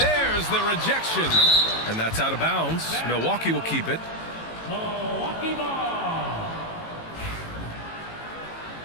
there's the rejection. And that's out of bounds. Milwaukee will keep it. Milwaukee ball.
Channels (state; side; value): late; right; 18 ms